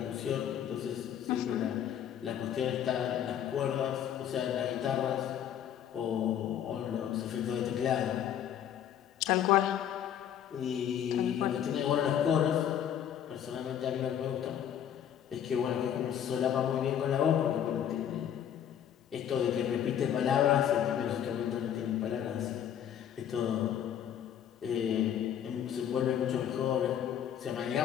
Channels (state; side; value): quieter; right; 9.7 dB